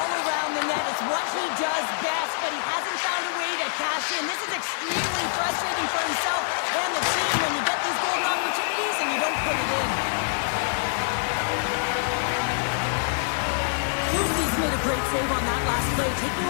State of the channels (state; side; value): silent; right; digital silence